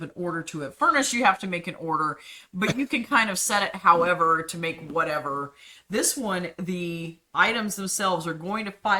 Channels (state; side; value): identical; both; correlation 1.00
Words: an order to it. Furnace, you have to make an order, but you can kind of set it however to make whatever. This one, the items themselves are going to